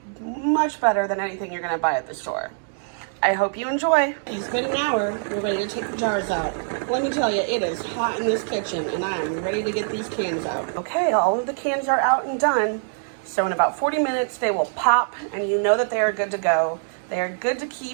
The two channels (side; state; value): left; silent; digital silence